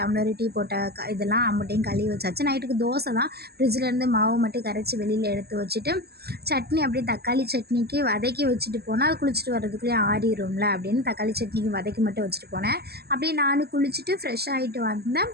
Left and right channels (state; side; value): late; left; 0.47 ms